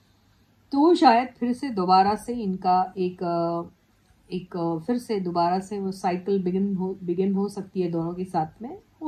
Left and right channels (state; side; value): identical; both; correlation 1.00